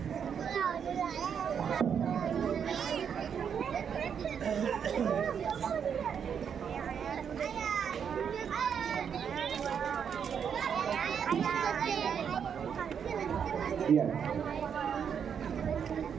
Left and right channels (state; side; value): quieter; left; 7.5 dB